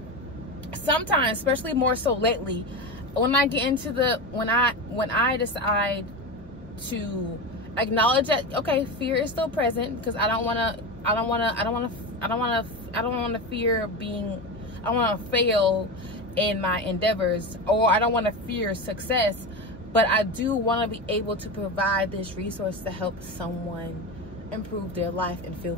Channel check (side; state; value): both; normal; correlation 0.21